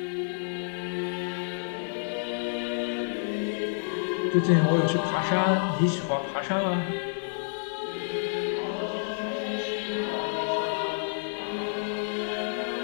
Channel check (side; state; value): right; silent; digital silence